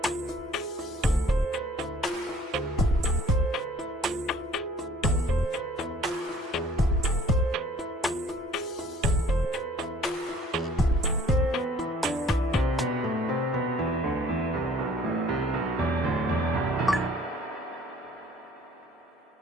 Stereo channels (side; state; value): both; normal; correlation 0.55